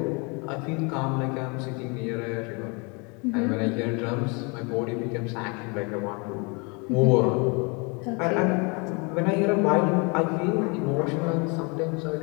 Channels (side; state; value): right; quieter; 31.4 dB